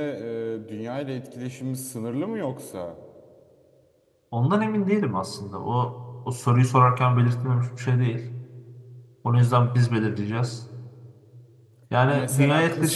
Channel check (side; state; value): both; identical; correlation 1.00